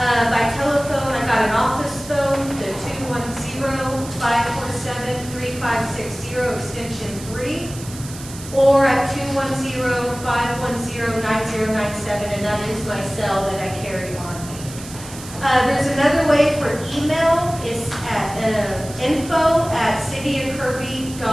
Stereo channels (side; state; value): right; noise; hiss, 14 dB below the sound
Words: telephone, I got an office phone, the 210-547-3560, extension 3, or at 210-510-9097, and that is my cell that I carry on me. There's another way for email. It's at